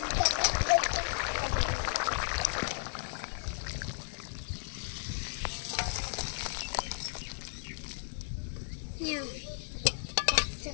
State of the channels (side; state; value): right; silent; 55 dB below the other